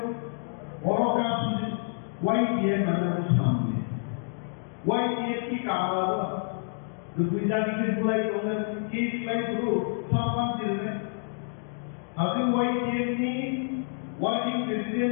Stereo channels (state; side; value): silent; right; digital silence